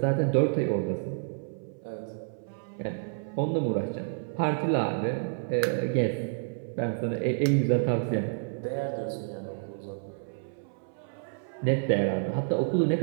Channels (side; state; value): left; silent; 58 dB below the other